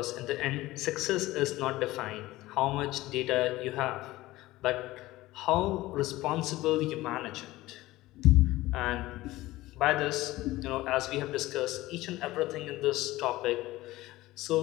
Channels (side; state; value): right; quieter; 17.9 dB